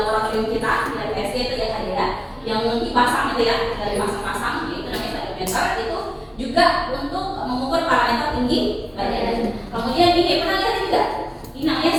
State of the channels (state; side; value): identical; both; correlation 1.00